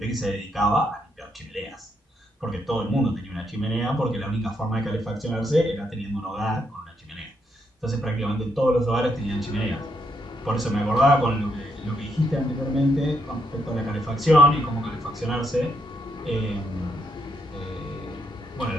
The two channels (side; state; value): both; normal; correlation 0.77